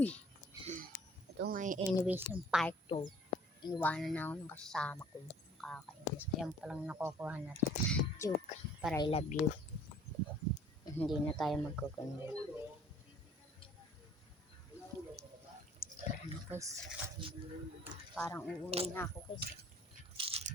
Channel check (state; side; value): normal; both; correlation 0.54